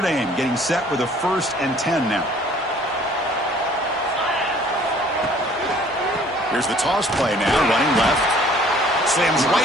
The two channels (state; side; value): normal; both; correlation 0.55